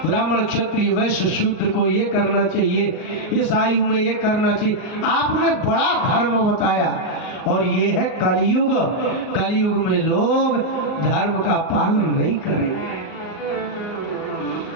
ब्राह्मण क्षत्रिय वैश्य शूद्र को ये करना चाहिए, इस आयु में ये करना चाहिए। आपने बड़ा धर्म बताया। और ये है कलयुग। कलयुग में लोग धर्म का पालन नहीं करेंगे।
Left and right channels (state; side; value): late; right; 38 ms